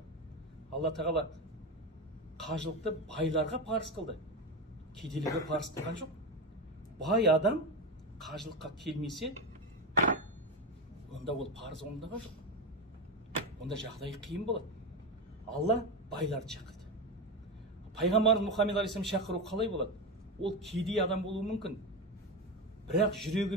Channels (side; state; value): both; normal; correlation 0.16